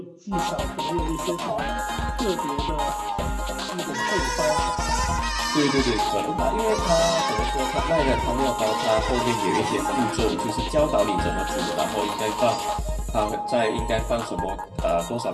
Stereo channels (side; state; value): both; identical; correlation 1.00